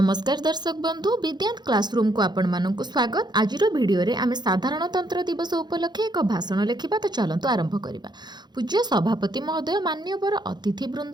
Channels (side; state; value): left; late; 0.21 ms